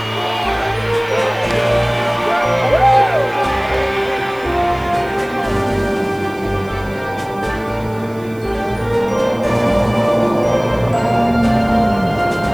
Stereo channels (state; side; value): noise; right; hiss, 26 dB below the sound